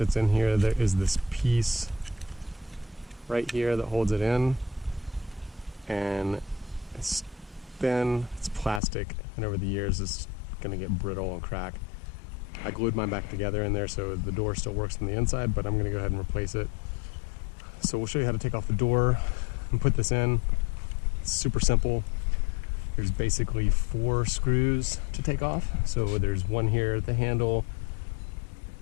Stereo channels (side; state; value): right; drops out; at 8.8 s